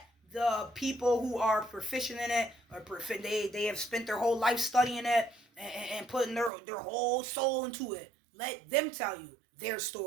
the people who are proficient in it, or they have spent their whole life studying it and putting their whole soul into it. Let them tell you their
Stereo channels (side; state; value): left; drops out; at 6.5 s